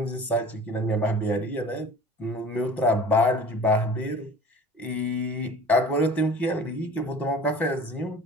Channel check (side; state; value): both; normal; correlation 0.43